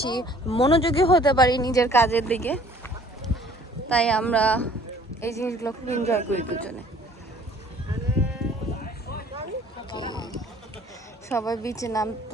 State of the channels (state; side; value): normal; both; correlation 0.54